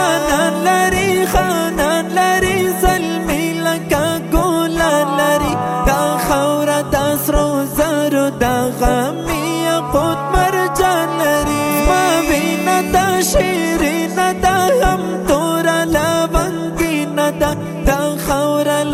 لري خانان لري زلمی لکا ګولان لري دا خاوره دا سرو زرو دا غمی یاقوت مرجان لري زما وینه دا شیرینه دا هم توره لونګینه دا دا خاوره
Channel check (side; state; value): both; identical; correlation 1.00